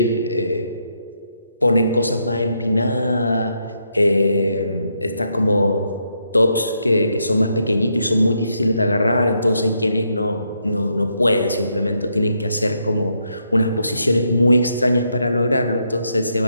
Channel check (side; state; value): both; inverted; correlation -0.78